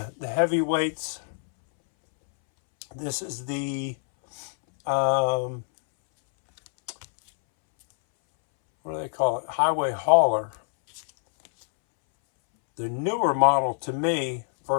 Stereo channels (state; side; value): silent; right; 62 dB below the other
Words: This is the what do they call it? Highway hauler. the newer model to me